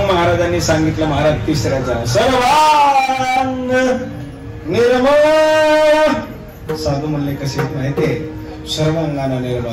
महाराजांनी सांगितलं, महाराज तिसऱ्याचा सर्वांग निर्मळ. साधू म्हणले कसे माहितीये? सर्वांगाना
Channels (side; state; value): both; identical; correlation 1.00